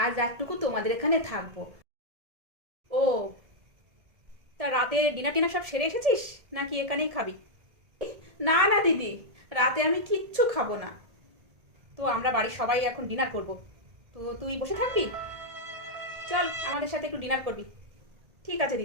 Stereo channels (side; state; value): left; late; 1.7 ms